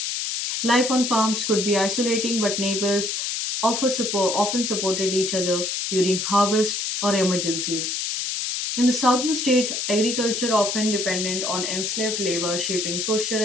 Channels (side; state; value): left; noise; hiss, 2 dB below the sound